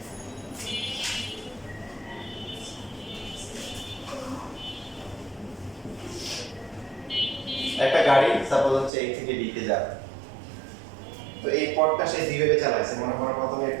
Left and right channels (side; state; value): left; drops out; at 8.9 s